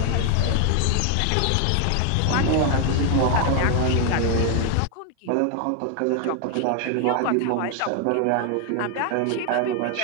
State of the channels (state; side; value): different; both; correlation 0.00